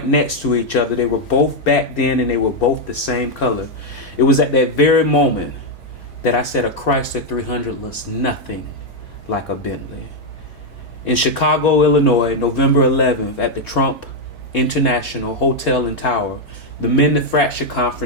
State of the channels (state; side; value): late; right; 4.5 ms